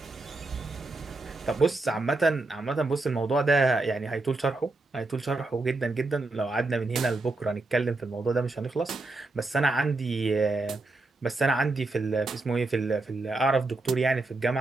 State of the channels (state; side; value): quieter; left; 3.2 dB